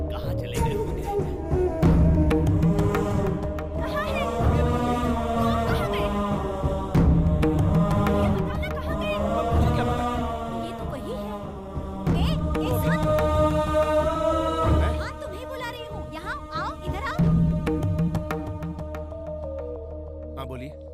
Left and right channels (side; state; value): both; identical; correlation 1.00